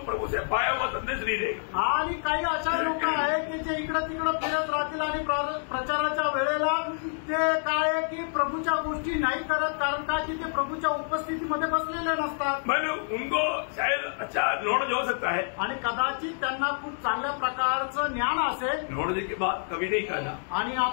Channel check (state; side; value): silent; right; digital silence